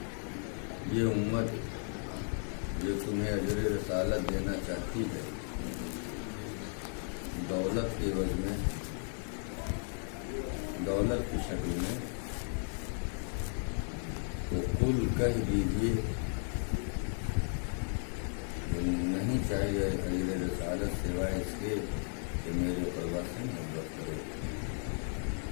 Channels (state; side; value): silent; right; 54 dB below the other